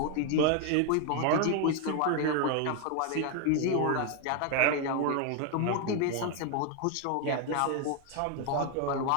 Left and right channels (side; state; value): both; different; correlation 0.01